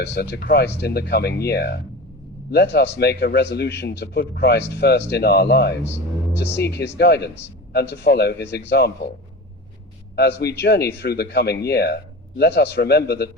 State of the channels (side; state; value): both; normal; correlation 0.31